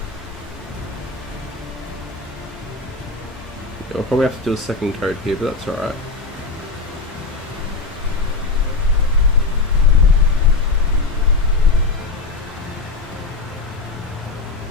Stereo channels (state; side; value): quieter; right; 3.9 dB